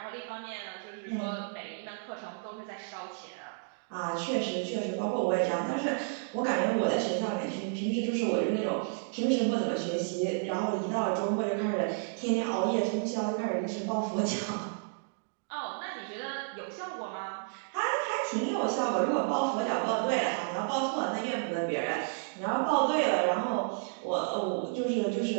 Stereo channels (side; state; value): left; silent; digital silence